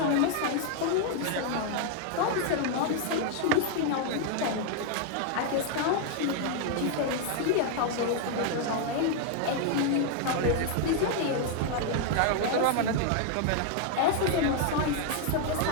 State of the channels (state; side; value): different; both; correlation 0.00